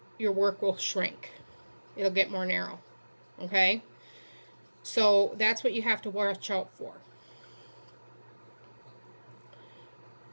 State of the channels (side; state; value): both; inverted; correlation -1.00